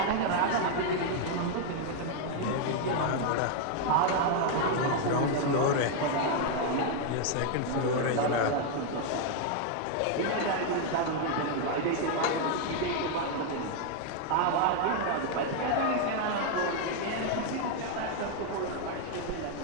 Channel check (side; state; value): both; different; correlation 0.00